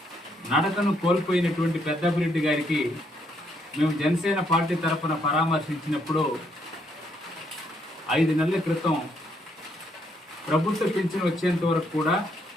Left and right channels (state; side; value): normal; both; correlation 0.73